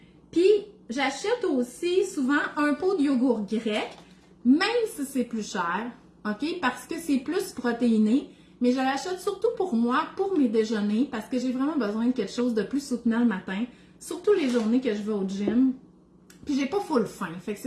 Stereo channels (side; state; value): both; identical; correlation 1.00